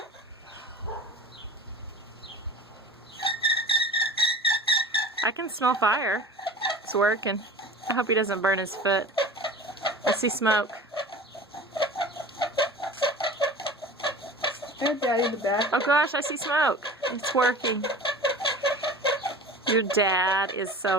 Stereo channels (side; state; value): both; normal; correlation 0.38